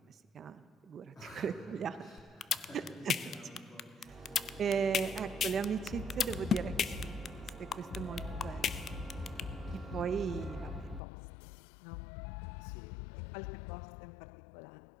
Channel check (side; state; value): right; drops out; at 11.0 s